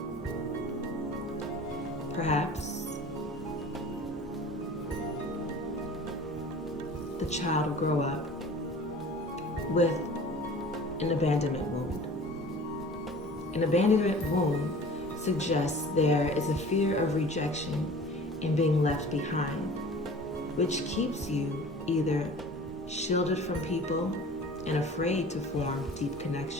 Perhaps the child will grow up with an abandonment wound. An abandonment wound suggests there is a fear of rejection and being left behind, which keeps you either shielded from people and afraid to form deep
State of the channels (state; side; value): normal; both; correlation 0.43